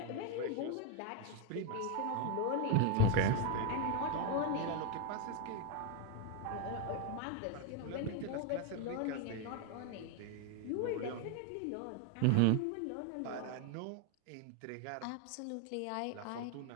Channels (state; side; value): different; both; correlation 0.01